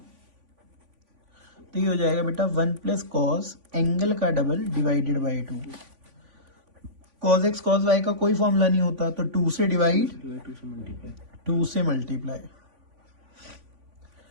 तो ये हो जाएगा बेटा 1 प्लस कॉस एंगल का double divided by 2। Cos x cos y का कोई फॉर्मूला नहीं होता, तो 2 से डिवाइड, 2 से मल्टीप्लाई।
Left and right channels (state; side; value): late; left; 3.5 ms